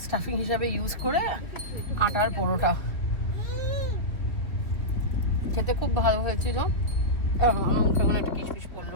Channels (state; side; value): late; right; 2.9 ms